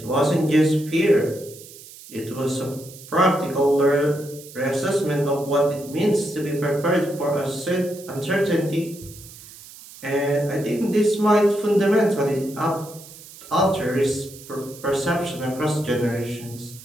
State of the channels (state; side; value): noise; right; hiss, 18 dB below the sound